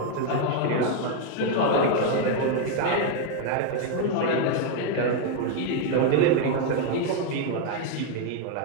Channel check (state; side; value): different; both; correlation 0.00